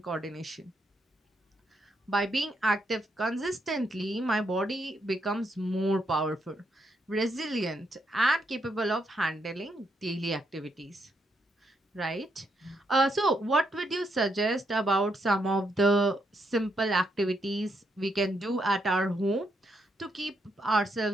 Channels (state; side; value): normal; both; correlation 0.78